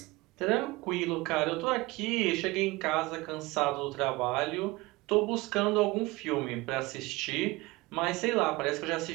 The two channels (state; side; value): quieter; left; 22.1 dB